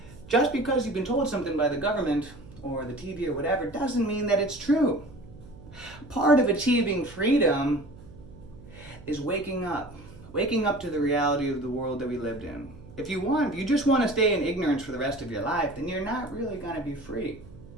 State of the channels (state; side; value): noise; right; hum, 19 dB below the sound